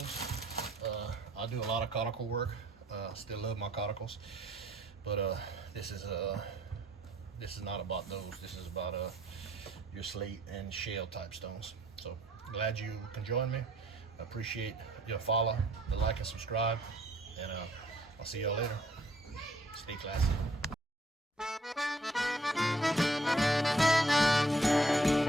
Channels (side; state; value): both; normal; correlation 0.63